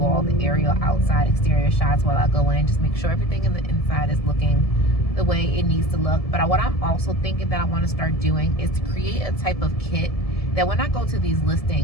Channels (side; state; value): right; late; 1.7 ms